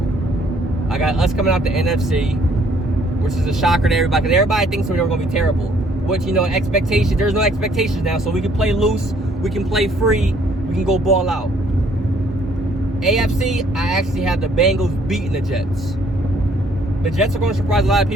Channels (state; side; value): normal; both; correlation 0.63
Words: I got us coming out the NFC, which is a shocker to everybody, because everybody thinks we were going to be terrible. Which, you know, expectations, there's no expectations now, so we can play loose, we can play free, we can go ball out. AFC, I actually have the Bengals beating the Jets. The Jets are going to surprise a lot of